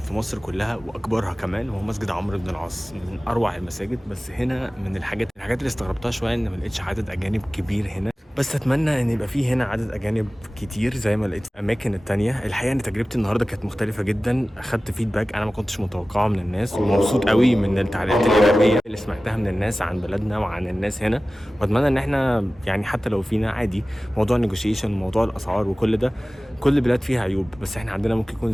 في مصر كلها واكبرها كمان، وهو مسجد عمرو بن العاص، من اروع المساجد. بس هنا من الحاجات اللي استغربتها شويه ان ما لقيتش عدد اجانب كبير هنا. بس اتمنى ان يبقى فيه هنا عدد اجانب كتير زي ما لقيت في الاماكن التانية. الحقيقه ان تجربتي النهارده كانت مختلفه جدا، اخدت فيدباك انا ما كنتش متوقعه من الناس، ومبسوط قوي من التعليقات الايجابيه اللي سمعتها من الناس عن بلدنا وعن الناس هنا. واتمنى ان احنا يعني حتى لو فينا عادي موضوع النيجوشيشن وموضوع الاسعار وكل ده، كل بلاد فيها عيوب بس احنا عندنا ممكن يكون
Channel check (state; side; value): normal; both; correlation 0.97